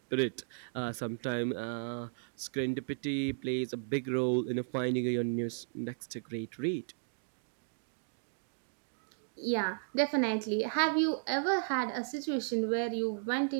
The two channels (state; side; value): silent; left; digital silence